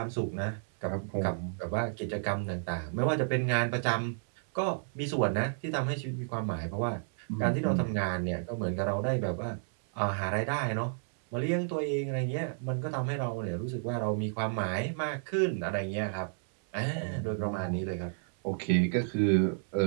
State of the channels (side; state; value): left; silent; 57 dB below the other